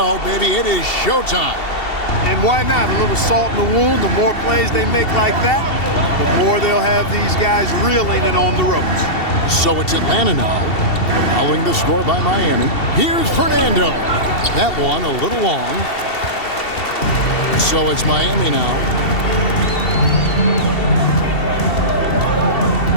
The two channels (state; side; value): late; right; 2.7 ms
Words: baby. It is showtime. And why not? A little salt in the wound. The more plays they make like that, the more they'll have these guys reeling and on the ropes. So it's Atlanta now, following the score by Miami. Here's Fernando. That one a little long. So it's Miami now.